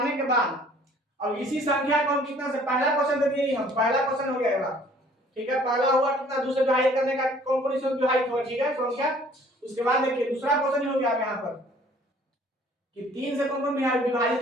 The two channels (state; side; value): normal; both; correlation 0.55